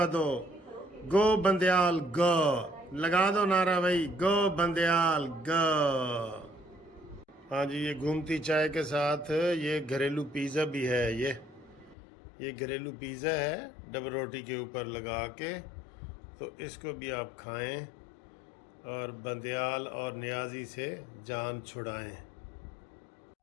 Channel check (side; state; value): right; drops out; at 12.0 s